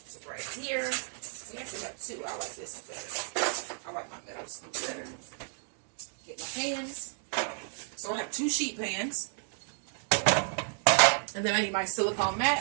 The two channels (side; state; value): left; silent; digital silence